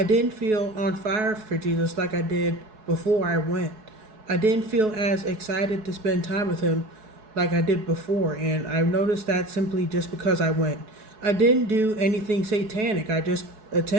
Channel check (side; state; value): left; late; 4.7 ms